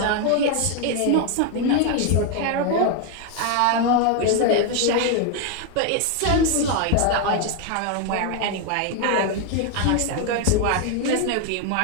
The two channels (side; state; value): both; different; correlation 0.01